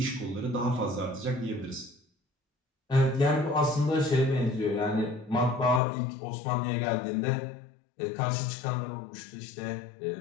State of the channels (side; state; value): right; drops out; at 5.8 s